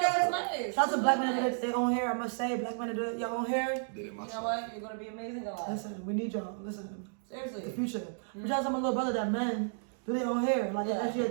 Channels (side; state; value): left; silent; digital silence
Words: nice. Shout out to black men that do their own hair. I must say, black men that do your own hair. Did it You myself. know what? You're going to be amazing alive. Listen, we need y'all. Listen, Seriously. the future. But shout out to my little brother that men do their own hair. Like, that's your